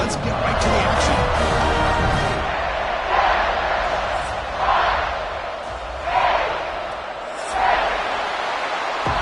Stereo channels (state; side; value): identical; both; correlation 1.00